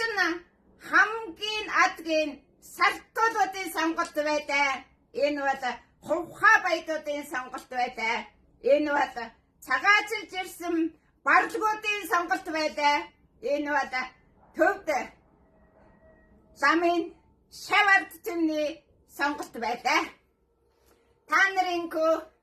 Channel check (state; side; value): identical; both; correlation 1.00